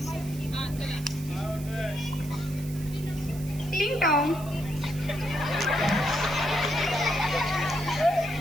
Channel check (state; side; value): noise; right; hiss, 17 dB below the sound